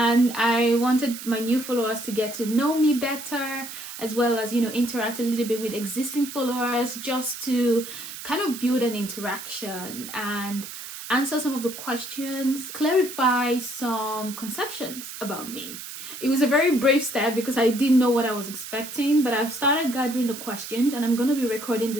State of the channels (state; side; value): noise; right; hiss, 11 dB below the sound